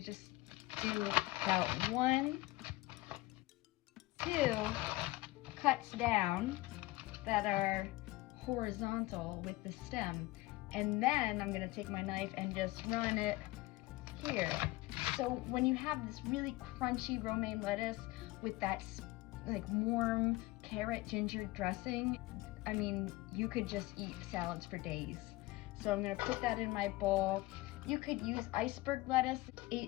do about 1, 2 cuts down that are horizontal with the stem. And then I'm gonna take my knife and just run it here. So when you have this really crunchy romaine lettuce with that like warm carrot ginger dressing, I mean, you could just eat salads for days. So I'm gonna put that in my bowl. You could use iceberg lettuce.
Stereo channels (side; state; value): right; quieter; 19.9 dB